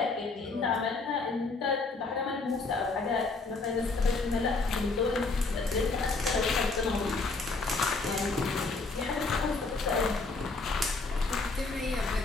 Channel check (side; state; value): right; quieter; 3.8 dB